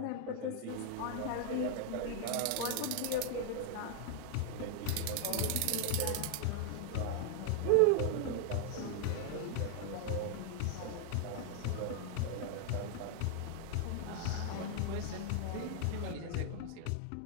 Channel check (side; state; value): both; different; correlation 0.00